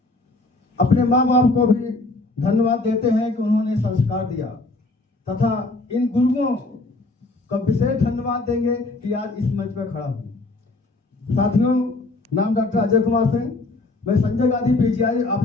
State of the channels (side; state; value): right; quieter; 3.1 dB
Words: अपने माँ बाप को भी धन्यवाद देते हैं कि उन्होंने संस्कार दिया, तथा इन गुरुओं का विशेष धन्यवाद देंगे कि आज इस मंच पर खड़ा हूँ। साथियों, नाम डॉक्टर अजय कुमार सिंह, मैं संजय गांधी पीजीआई